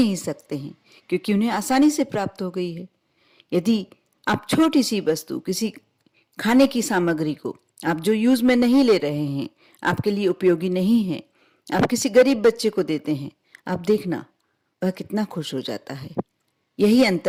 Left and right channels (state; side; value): identical; both; correlation 1.00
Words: सकते हैं, क्योंकि उन्हें आसानी से प्राप्त हो गई है। यदि आप छोटी सी वस्तु, किसी खाने की सामग्री को आप जो यूज में नहीं ले रहे हैं, आपके लिए उपयोगी नहीं है, आप किसी गरीब बच्चे को देते हैं, आप देखना वह कितना खुश हो जाता है। यही